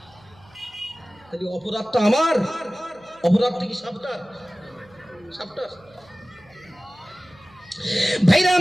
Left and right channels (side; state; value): right; noise; hum, 28 dB below the sound